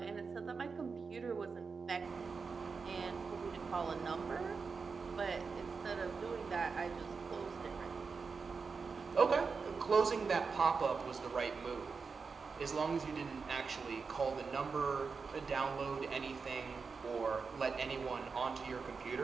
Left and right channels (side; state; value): left; quieter; 5.0 dB